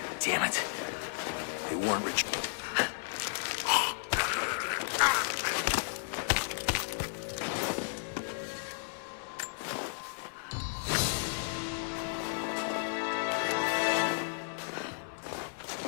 damn it. They weren't rich.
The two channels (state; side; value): silent; right; 55 dB below the other